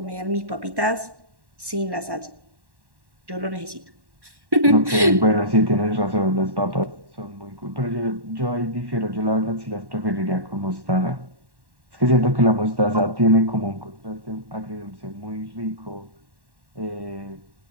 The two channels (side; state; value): left; late; 1.1 ms